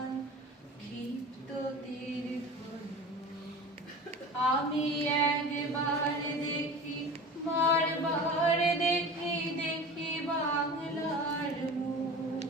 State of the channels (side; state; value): both; normal; correlation 0.36